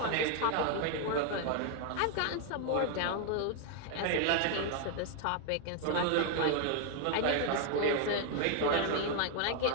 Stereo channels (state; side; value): different; both; correlation 0.00